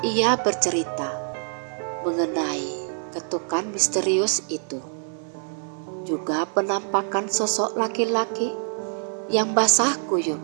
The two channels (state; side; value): silent; left; 62 dB below the other